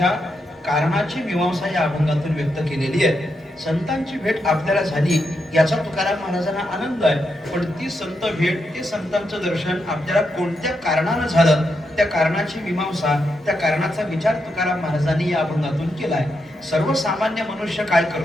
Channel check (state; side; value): normal; both; correlation 0.83